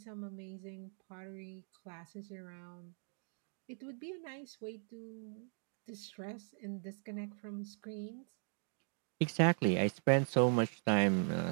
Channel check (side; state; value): left; silent; 52 dB below the other